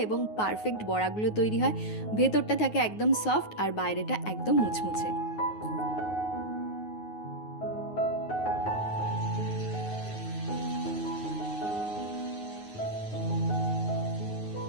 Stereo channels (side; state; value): right; late; 9.4 ms